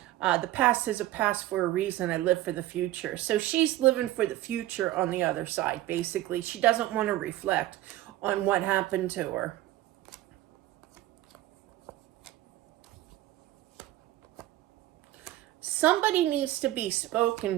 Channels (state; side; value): quieter; left; 15.4 dB